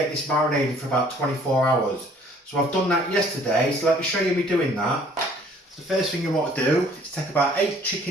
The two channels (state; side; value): normal; both; correlation 0.57